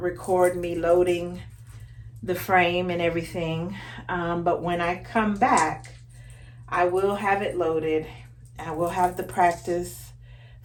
me loading the frame and everything, but when I come back, I will have it loaded. I will have the practice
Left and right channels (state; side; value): identical; both; correlation 1.00